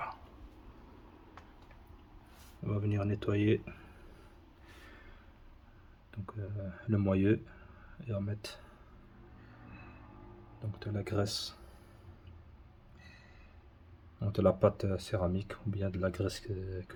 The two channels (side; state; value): both; identical; correlation 1.00